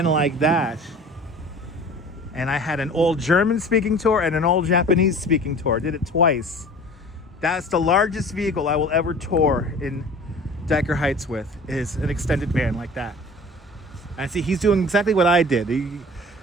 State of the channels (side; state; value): both; normal; correlation 0.43